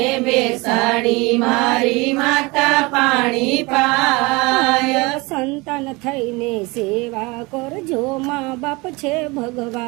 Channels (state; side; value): quieter; left; 24.8 dB